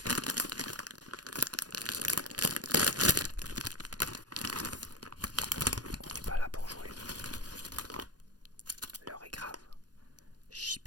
On n'est pas là pour jouer. L'heure est grave.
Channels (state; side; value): late; left; 0.69 ms